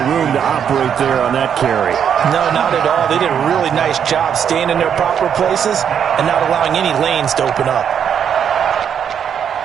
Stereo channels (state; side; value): quieter; left; 8.2 dB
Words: room to operate there on that carry. No, not at all. They did a really nice job staying in their proper places and not allowing any lanes to open up.